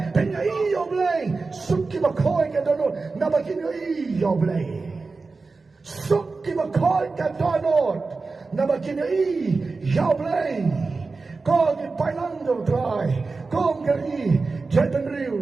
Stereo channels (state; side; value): quieter; left; 4.0 dB